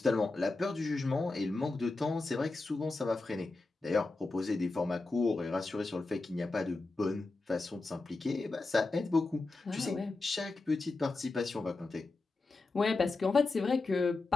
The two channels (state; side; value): quieter; right; 3.4 dB